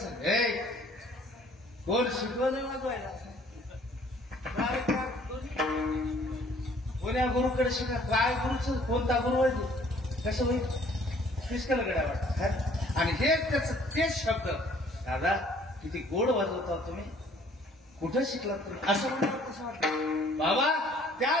हे कोण शिकवलं वाजवायला? कोण्या गुरुकडे शिका? काय गुरुच? कोणता गुरु आहे? कसं होईल? फिसकल गड्या वाटत. आणि हे त्याच तेच शब्द, दादा किती गोड वाजवता तुम्ही, कुठं शिकलात तुम्ही? असं म्हणलं कसं वाटतं बाबा? त्या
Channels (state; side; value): normal; both; correlation 0.58